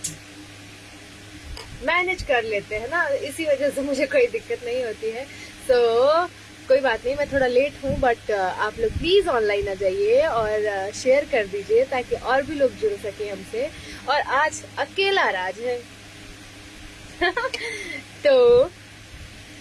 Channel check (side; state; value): both; identical; correlation 1.00